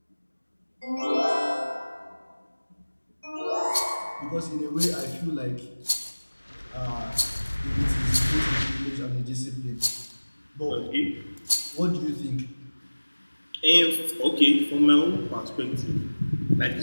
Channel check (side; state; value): both; inverted; correlation -1.00